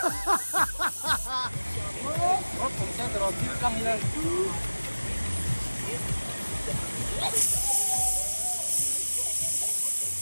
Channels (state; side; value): inverted; both; correlation -1.00